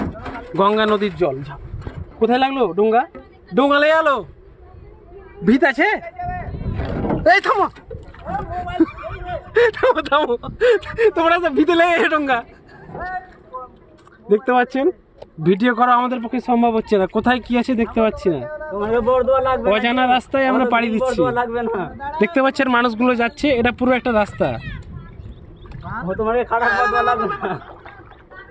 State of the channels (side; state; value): both; identical; correlation 1.00